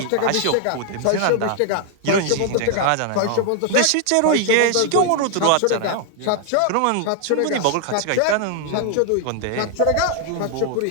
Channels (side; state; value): both; different; correlation 0.00